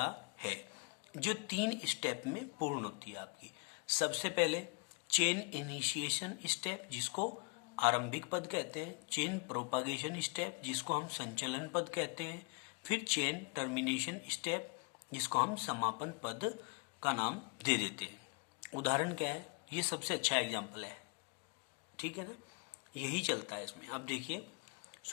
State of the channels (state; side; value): quieter; right; 34.2 dB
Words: है जो 3 स्टेप में पूर्ण होती है आपकी। सबसे पहले चेन इनिशिएशन स्टेप जिसको आरंभिक पद कहते हैं, चेन प्रोपागेशन स्टेप जिसको हम संचलन पद कहते हैं, फिर चेन टर्मिनेशन स्टेप जिसको हम समापन पद का नाम दे देते हैं। उदाहरण क्या है, ये सबसे अच्छा एग्जाम्पल है, ठीक है ना, यही चलता है इसमें। अब देखिए,